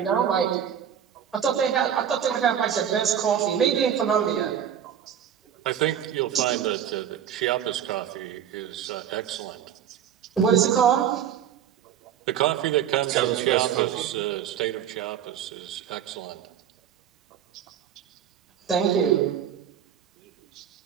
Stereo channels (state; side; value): quieter; left; 9.2 dB